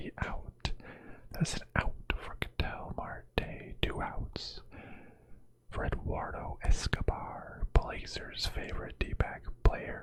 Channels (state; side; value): identical; both; correlation 1.00